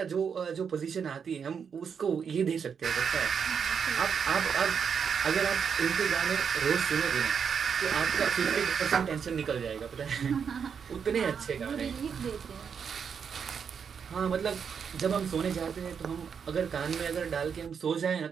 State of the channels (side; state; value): left; quieter; 6.8 dB